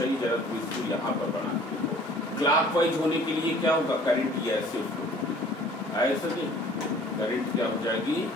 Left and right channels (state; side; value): normal; both; correlation 0.51